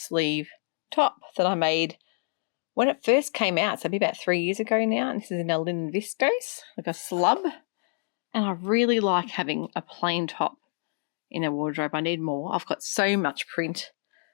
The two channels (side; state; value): right; silent; digital silence